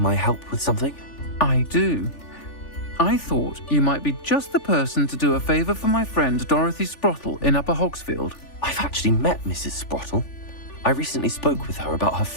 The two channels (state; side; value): late; right; 3.4 ms